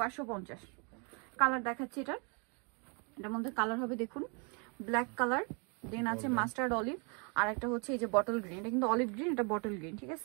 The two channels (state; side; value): quieter; left; 35.3 dB